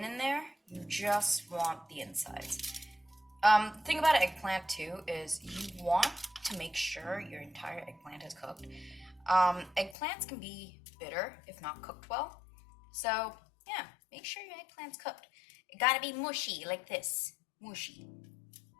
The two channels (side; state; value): right; drops out; at 10.0 s